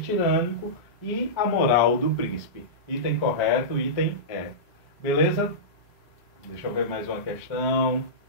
e a moral do príncipe. Item correto, item Beleza? Deixa eu ver mais uma questão.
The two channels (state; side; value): normal; both; correlation -0.17